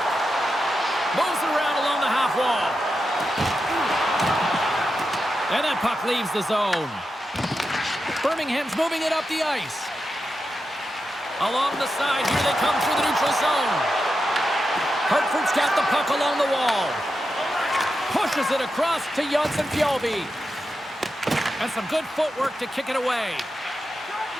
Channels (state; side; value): normal; both; correlation 0.88